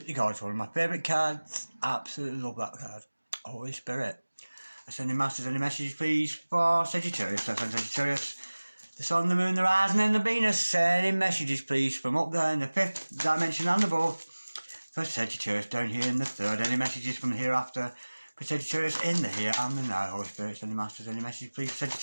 gorgeous. One of my favourite cards. Absolutely love that card. Holy Spirit. Sending masters any messages please for Sagittarius. That's Sagittarius. The Sun, the Moon, the Rising and the Venus. Sending messages please from up there in the fifth dimension and above for Sagittarius. Down here in the third. Any messages from the hereafter for Sagittarius in the here and the now. Holy Spirit, sending masters any messages please for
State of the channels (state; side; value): inverted; both; correlation -1.00